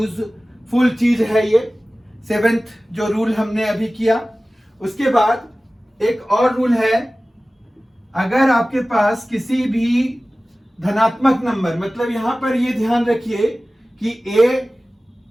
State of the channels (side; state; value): both; normal; correlation 0.97